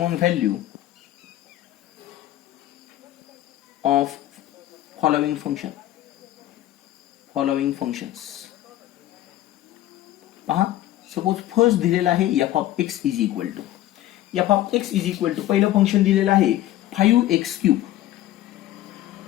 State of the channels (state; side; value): quieter; right; 14.1 dB